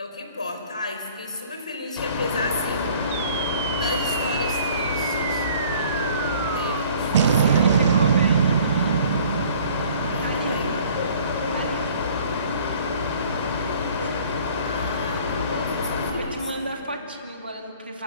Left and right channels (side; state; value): both; inverted; correlation -0.53